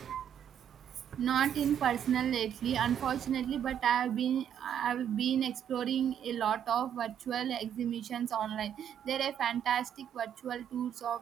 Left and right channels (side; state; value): left; quieter; 9.3 dB